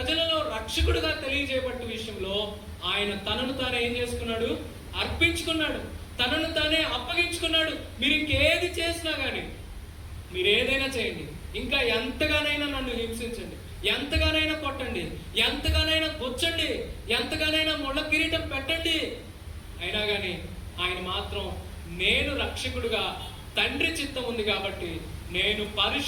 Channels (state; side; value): identical; both; correlation 1.00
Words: రక్షకుడుగా తెలియజేయబట్ట విషయంలో ఆయన తనను తానే ఏం చేసుకున్నాడు? అర్పించుకున్నాడు, తనను తానే అప్పగించుకున్నాడు. మీరు ఇంకేది చేసినా కానీ, మీరు ఏదైనా చేయండి, ఇంకా ఎంతగానైనా నన్ను హింసించండి, ఎంతగానైనా కొట్టండి, ఎంతగానైనా గుచ్చండి, ఎంతగానైనా ముళ్ళ కిరీటం పెట్టండి, అయినా కానీ ఆయన మాత్రం నేను రక్షకుడుగా తండ్రి చిత్తం ఉంది కాబట్టి నేను